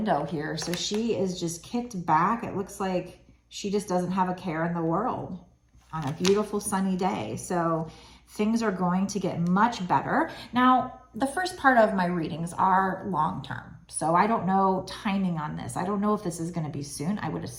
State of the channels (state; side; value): identical; both; correlation 1.00